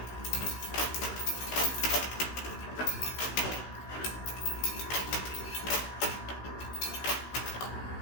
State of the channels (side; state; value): right; late; 16 ms